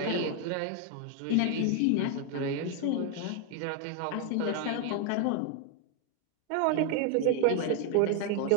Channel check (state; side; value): different; both; correlation 0.01